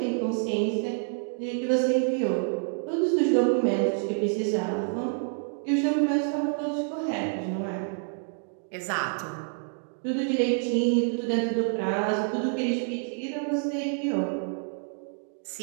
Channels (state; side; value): silent; left; 59 dB below the other